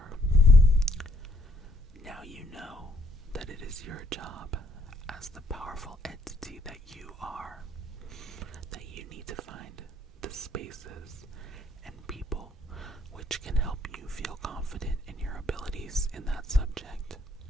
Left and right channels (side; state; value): both; normal; correlation 0.68